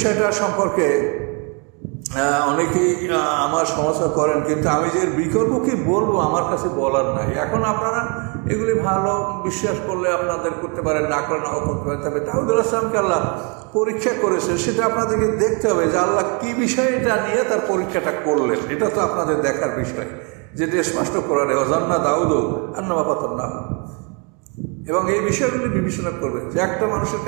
সম্পর্কে অনেকেই আমার সমালোচনা করেন, কিন্তু আমি যে বিকল্প কি বলবো আমার কাছে বলার নাই। এখন আপনারা এগুলি ভালো বিশ্বাস করলে আপনাদের করতে পারেন, না করে নাও করতে পারেন। তবে দাউদ আলাইহিসকে আল্লাহ পরীক্ষা করেছে, সেটা আপনাদেরকে দেখতে হবে যে আল্লাহ কি বিষয়টা নিয়ে তার পরীক্ষাটা করলেন। এটা তো আপনাদের দেখার বিষয়, যেটা স্পষ্ট করার অজান্না দাউদ আন্নামা পাতান্না। এবং এই বিষয়গুলি বিবেচনা করবেন যে একটা মানুষের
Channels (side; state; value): left; quieter; 34.4 dB